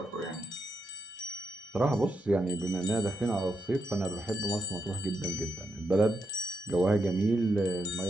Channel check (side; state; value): both; normal; correlation 0.81